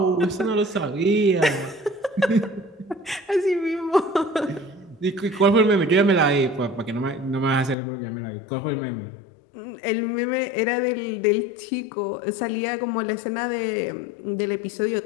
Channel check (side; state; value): right; drops out; at 7.8 s